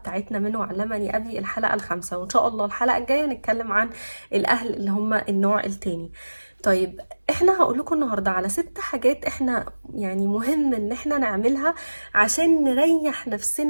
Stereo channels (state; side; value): inverted; both; correlation -1.00